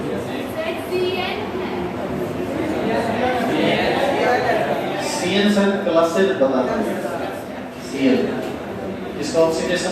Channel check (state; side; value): identical; both; correlation 1.00